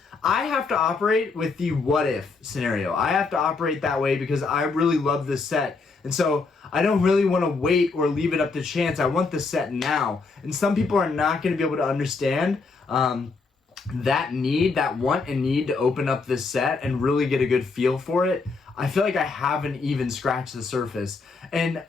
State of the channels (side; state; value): right; quieter; 4.2 dB